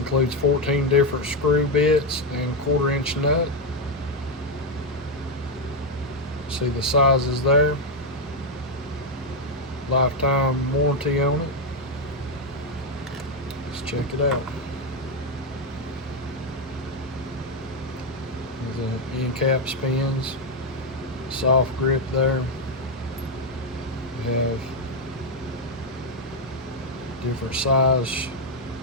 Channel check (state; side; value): normal; both; correlation 0.03